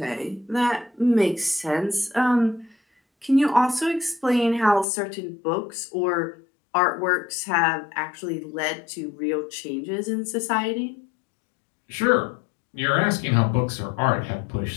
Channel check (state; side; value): drops out; right; at 4.9 s